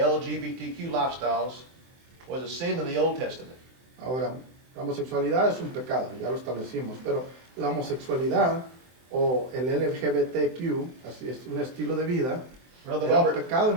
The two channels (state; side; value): late; left; 23 ms